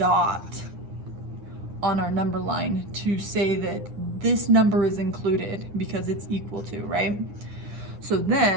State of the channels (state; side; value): late; left; 9.8 ms